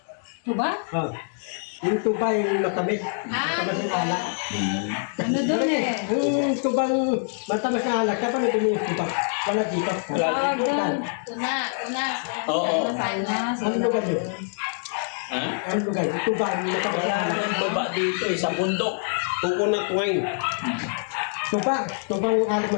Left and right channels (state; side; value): silent; right; digital silence